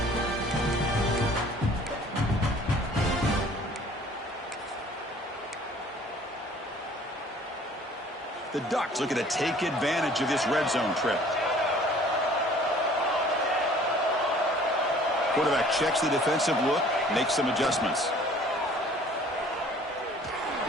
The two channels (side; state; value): both; normal; correlation 0.53